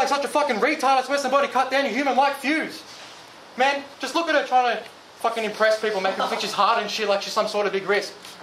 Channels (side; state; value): both; identical; correlation 1.00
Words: such a fucking retard, I swear somebody cut down your human-like fuse. Man, just look at her trying to fucking impress people, making her think she's hard and shit like she's some sort of big risk.